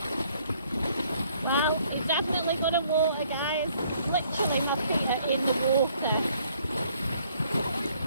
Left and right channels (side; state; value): both; inverted; correlation -0.63